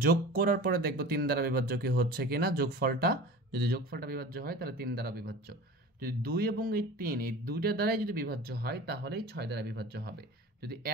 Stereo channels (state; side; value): normal; both; correlation 0.37